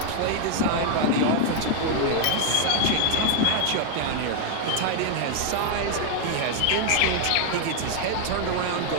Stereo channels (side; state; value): both; different; correlation 0.00